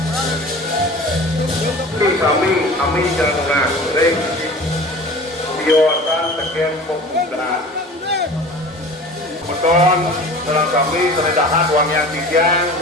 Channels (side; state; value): both; normal; correlation 0.40